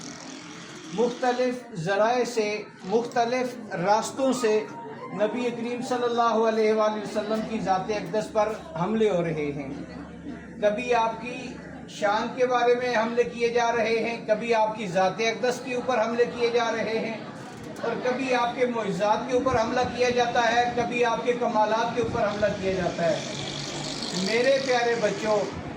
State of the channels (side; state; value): both; identical; correlation 1.00